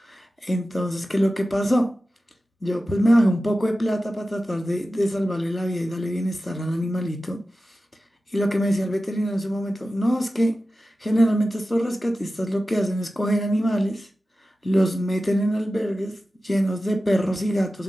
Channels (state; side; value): normal; both; correlation 0.94